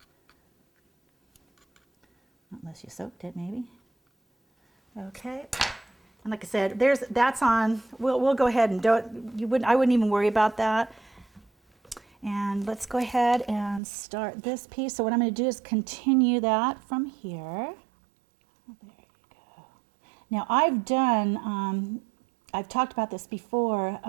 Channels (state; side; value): drops out; left; at 13.8 s